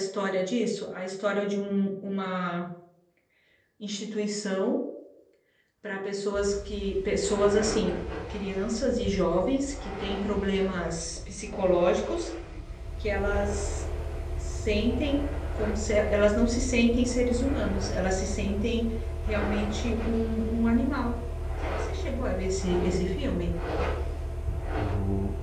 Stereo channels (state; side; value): identical; both; correlation 1.00